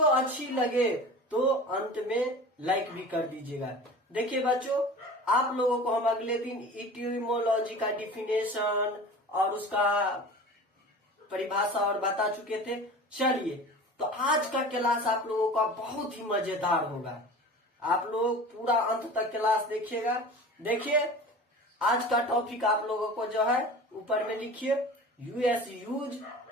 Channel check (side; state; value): both; normal; correlation 0.37